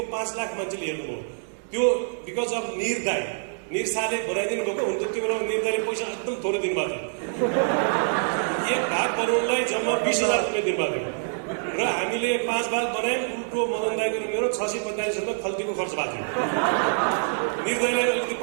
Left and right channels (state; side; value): silent; left; digital silence